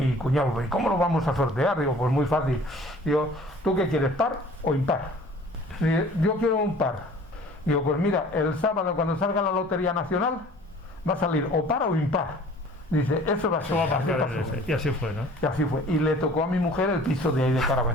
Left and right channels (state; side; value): normal; both; correlation 0.48